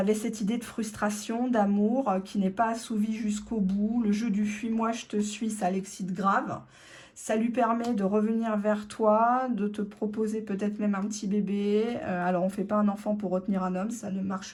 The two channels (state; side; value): identical; both; correlation 1.00